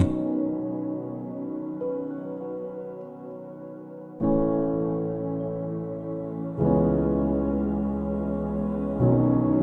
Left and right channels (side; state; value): both; identical; correlation 1.00